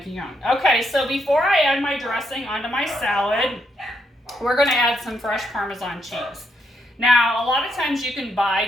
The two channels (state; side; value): normal; both; correlation 0.78